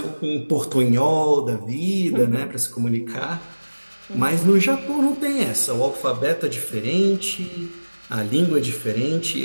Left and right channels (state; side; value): inverted; both; correlation -1.00